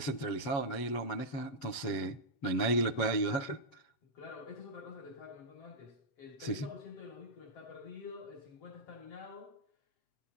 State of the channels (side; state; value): right; late; 7.8 ms